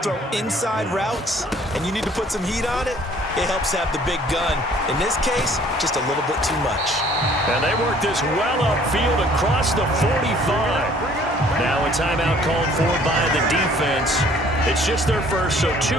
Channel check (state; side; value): normal; both; correlation 0.56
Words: throw inside routes and you need to put some heat on it, it helps to have the big gun. In this case, just a little bit too much. And they work this well upfield across the 45. Now a timeout called for by the defense. It's just their first, so